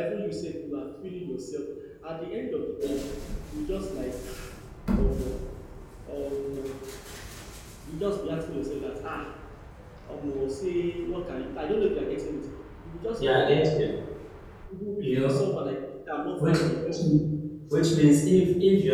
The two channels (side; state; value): both; identical; correlation 1.00